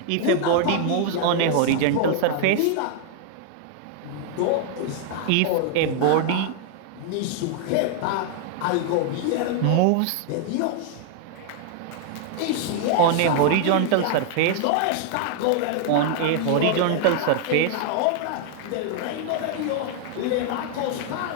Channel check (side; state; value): both; different; correlation 0.00